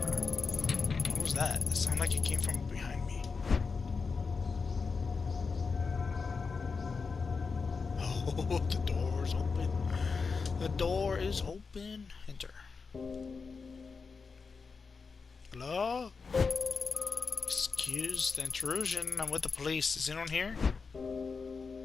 What was that? It sounded like it came from behind me. Oh, the door is open. The door is open. Enter. Hello? Excuse the intrusion. I'm with the police. Is anyone here?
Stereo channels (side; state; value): right; quieter; 4.9 dB